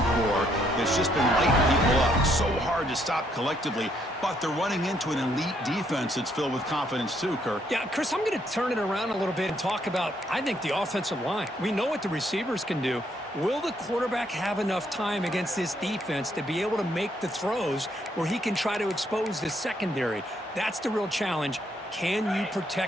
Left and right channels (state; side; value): normal; both; correlation 0.71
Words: core that's just been lighting people up. So hard to stop collectively, but they're running into an elite defense that's filled with confidence too, Kirk. Yeah, Chris, I'm going to turn it around a little bit and talk about, I think, the offensive line. We know what the receivers can do. Will the quarterback have enough time against this defense to be able to make the throws where he can try to expose the secondary? That's the real challenge. Can you